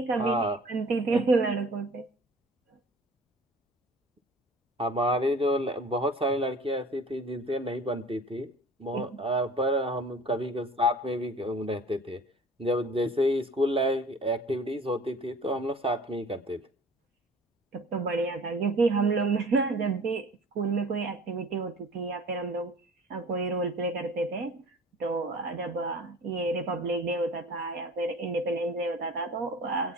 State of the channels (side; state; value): both; normal; correlation 0.45